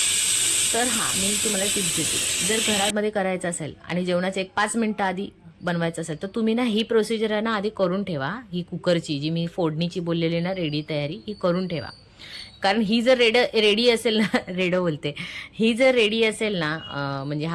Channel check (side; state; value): both; identical; correlation 1.00